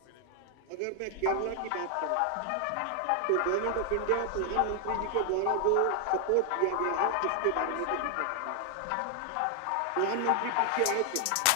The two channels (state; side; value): different; both; correlation 0.00